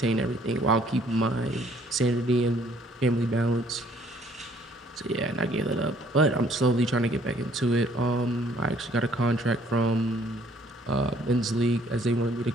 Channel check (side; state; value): both; normal; correlation 0.61